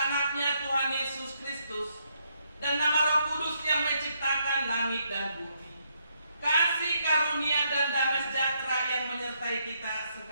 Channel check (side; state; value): both; inverted; correlation -0.75